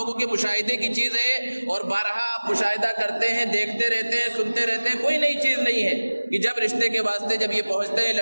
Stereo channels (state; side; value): inverted; both; correlation -1.00